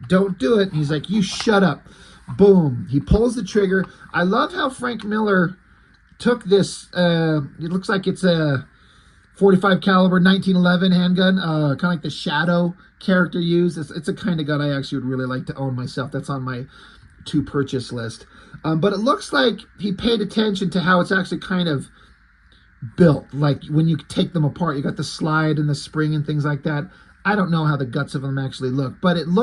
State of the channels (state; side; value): identical; both; correlation 1.00